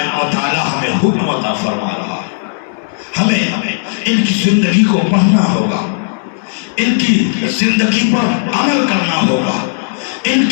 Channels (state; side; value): silent; right; digital silence